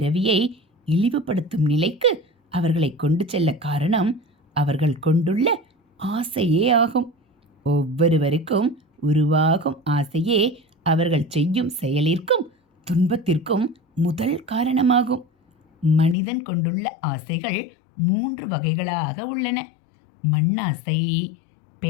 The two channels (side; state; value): right; drops out; at 16.2 s